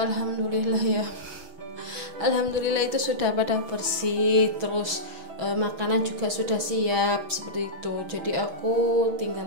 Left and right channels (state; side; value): late; left; 6.2 ms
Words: ya, alhamdulillah itu sudah pada bersih. Terus makanan juga sudah siap seperti itu. Jadi aku